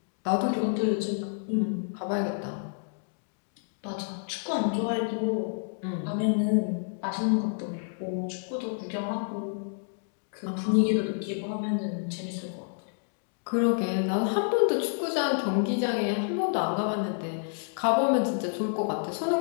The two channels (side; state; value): right; silent; digital silence